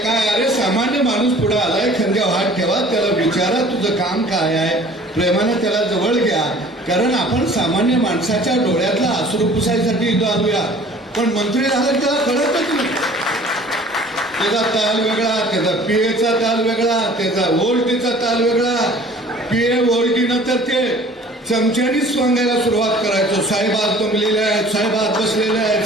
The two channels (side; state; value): both; normal; correlation 0.49